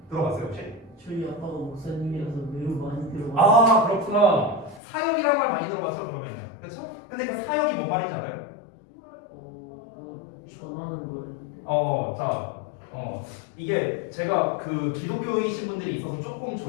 들어봤어요 혹시? 저희 아빠가 목사님이라서 매우 많이 들어봤어요. 아, 그렇구나. 사역이라는 말 많이 들어봤죠, 그러면은. 그렇죠? 근데 그 사역이 뭔 말인지 알아요? 뭐 전하는 거예요. 이게 제가 그 기독교이신 분들이 있어서 조금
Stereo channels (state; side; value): drops out; right; at 4.8 s